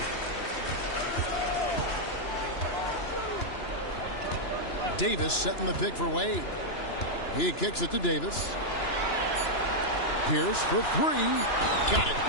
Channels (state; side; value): late; right; 2.9 ms